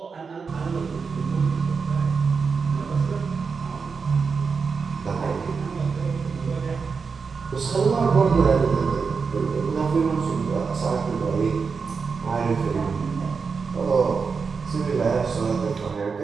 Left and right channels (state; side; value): quieter; left; 5.3 dB